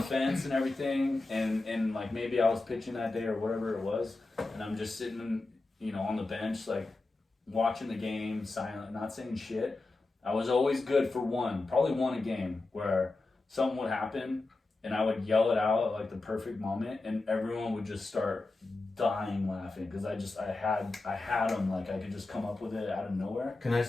fence and everything, and like maybe I was pitching that day or whatever it was, and I'm just sitting, you know, on the bench like watching the game, silent, not saying shit. I was always good for probably one a game where something would happen and I would yell it out at like the perfect moment, and everyone would just start dying laughing because I had them, like I could just come up with it out of nowhere. Can I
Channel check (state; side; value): quieter; right; 3.3 dB